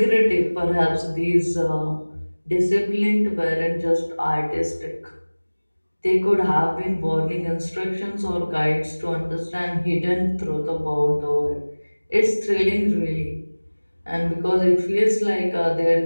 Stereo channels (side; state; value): both; inverted; correlation -1.00